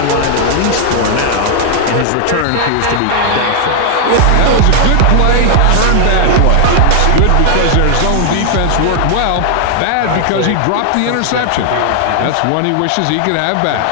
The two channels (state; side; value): different; both; correlation 0.00